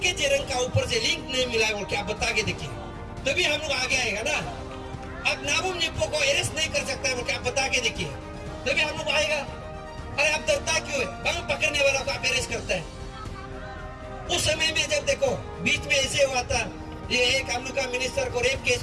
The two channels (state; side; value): identical; both; correlation 1.00